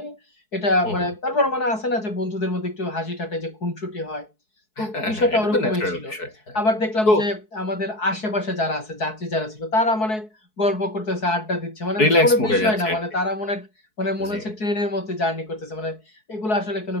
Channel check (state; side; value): late; right; 4.7 ms